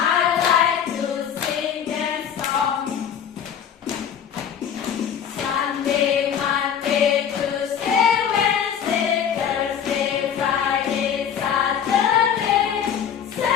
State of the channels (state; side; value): quieter; right; 8.4 dB